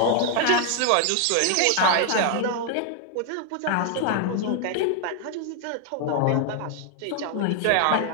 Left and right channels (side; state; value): both; different; correlation 0.00